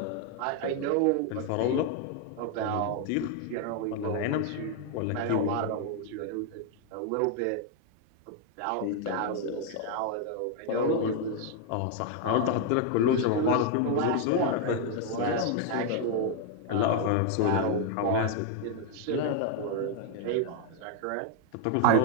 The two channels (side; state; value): both; different; correlation 0.00